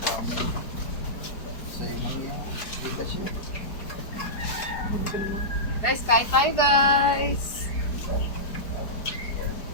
Guys, kain tayo guys.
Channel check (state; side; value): late; right; 4.5 ms